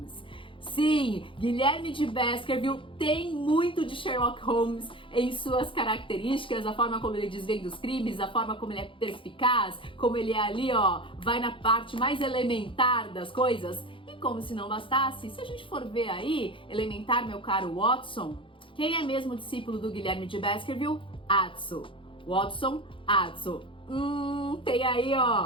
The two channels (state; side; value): late; right; 0.25 ms